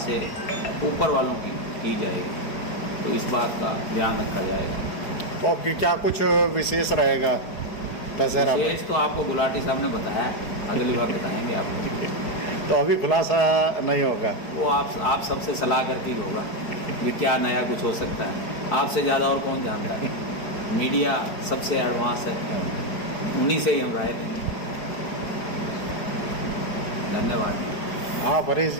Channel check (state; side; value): late; right; 4.9 ms